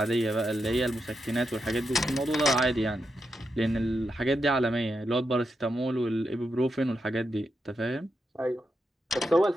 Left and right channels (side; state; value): both; normal; correlation 0.85